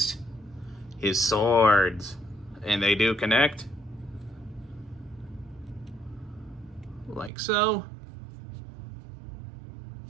his swords. And they do connect. Like so.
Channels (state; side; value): drops out; left; at 7.3 s